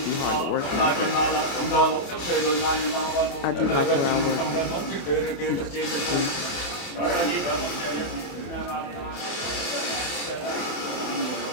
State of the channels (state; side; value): late; right; 28 ms